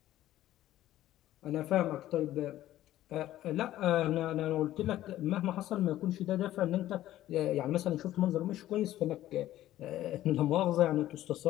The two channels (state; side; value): quieter; right; 13.9 dB